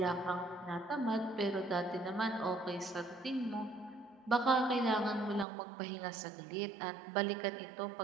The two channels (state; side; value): drops out; left; at 5.5 s